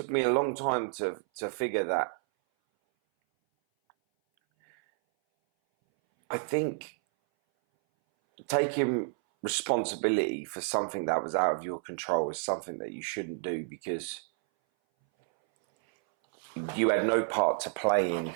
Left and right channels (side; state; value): left; silent; 58 dB below the other